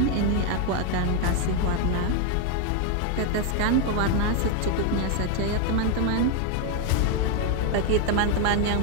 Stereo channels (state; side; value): different; both; correlation 0.01